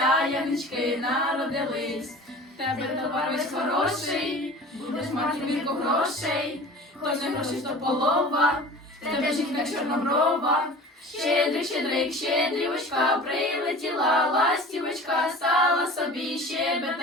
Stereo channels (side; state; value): both; normal; correlation 0.40